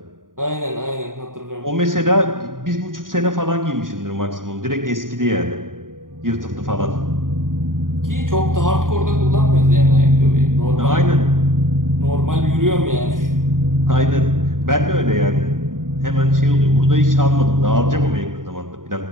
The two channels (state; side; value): late; left; 0.90 ms